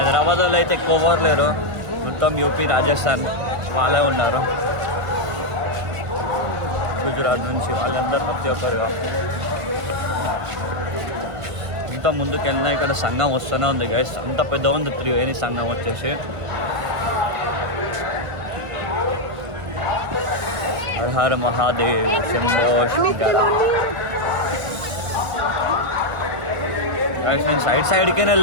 వాళ్ళు అయితే ఎక్కువ ఎవరు లేరు మొత్తం యూపీ రాజస్థాన్ వాళ్ళే ఉన్నారు గుజరాత్ నుంచి వాళ్ళందరూ ప్రతి ఒక్కరుగా ఇంత ముందుకు వెళ్ళినా ఇక్కడ సంఘం వస్తూనే ఉంది గైస్ అంత పెద్ద ఉంది త్రివేణి సంఘం వచ్చేసి హర హర మహాదేవ్ శంభో శంకర నేను సైడ్కి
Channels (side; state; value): left; late; 1.5 ms